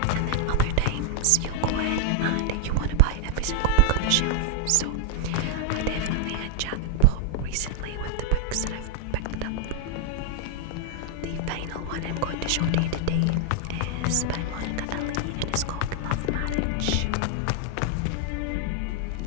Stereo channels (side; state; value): both; different; correlation 0.00